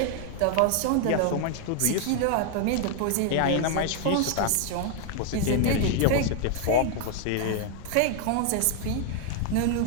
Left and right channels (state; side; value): different; both; correlation 0.00